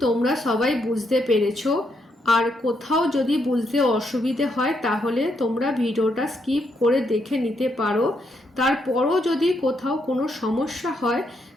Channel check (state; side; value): normal; both; correlation 0.77